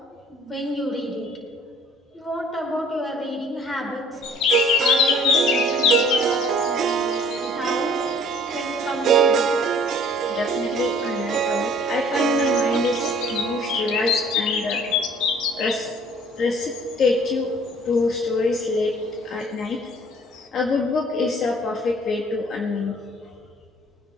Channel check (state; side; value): normal; both; correlation 0.53